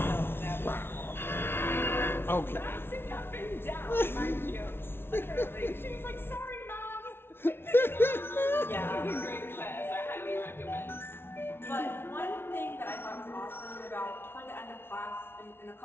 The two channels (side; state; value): right; late; 0.11 ms